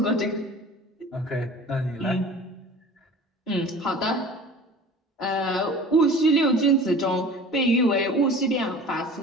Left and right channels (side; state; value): both; normal; correlation 0.42